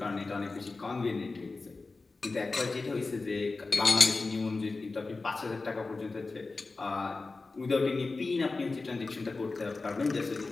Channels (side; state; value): right; quieter; 3.7 dB